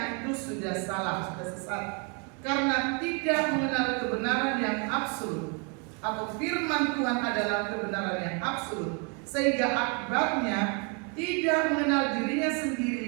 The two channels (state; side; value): quieter; left; 35.8 dB